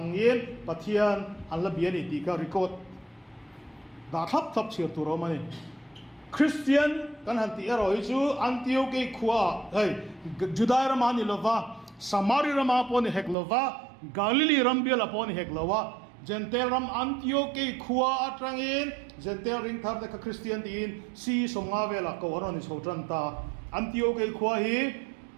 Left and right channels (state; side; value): drops out; left; at 13.4 s